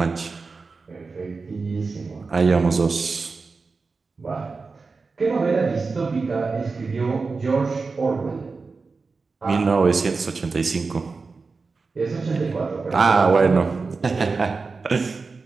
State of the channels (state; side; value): quieter; left; 4.3 dB